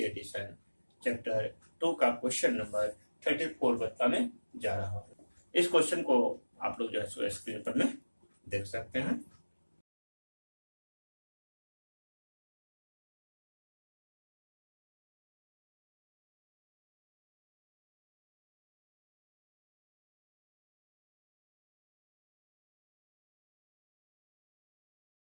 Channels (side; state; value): both; inverted; correlation -1.00